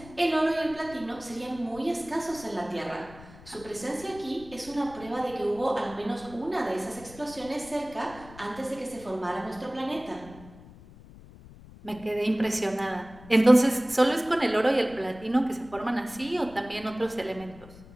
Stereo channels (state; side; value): noise; left; rumble, 19 dB below the sound